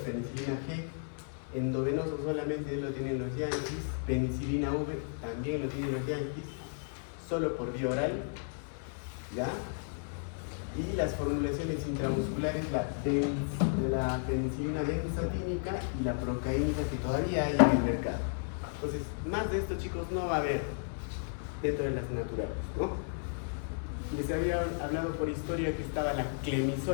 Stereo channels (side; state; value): right; silent; 55 dB below the other